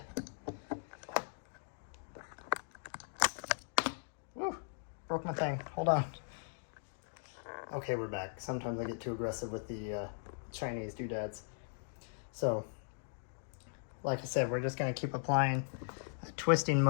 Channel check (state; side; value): silent; right; digital silence